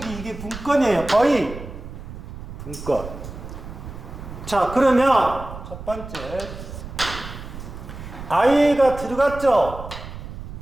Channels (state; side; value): noise; right; rumble, 11 dB below the sound